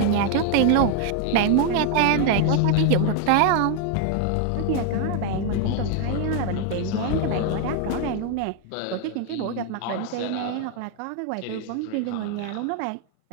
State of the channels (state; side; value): different; both; correlation 0.00